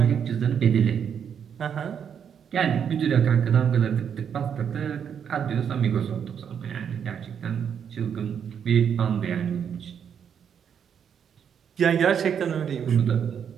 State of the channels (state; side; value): quieter; left; 7.9 dB